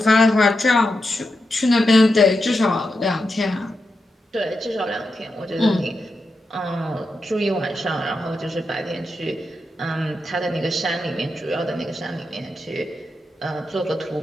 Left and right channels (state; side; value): normal; both; correlation 0.87